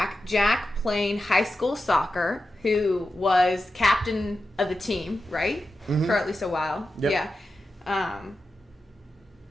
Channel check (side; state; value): both; normal; correlation 0.91